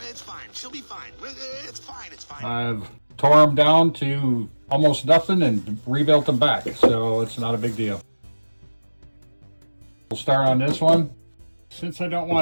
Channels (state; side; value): inverted; both; correlation -1.00